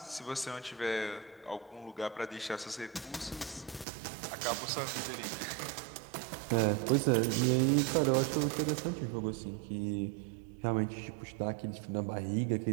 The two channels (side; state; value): left; drops out; at 3.9 s